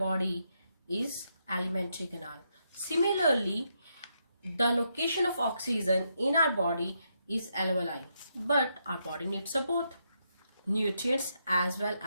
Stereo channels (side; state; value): both; inverted; correlation -0.80